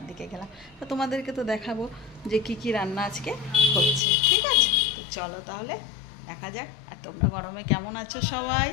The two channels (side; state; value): right; drops out; at 4.0 s